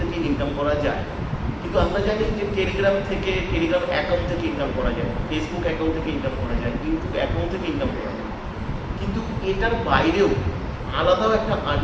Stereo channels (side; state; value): both; identical; correlation 1.00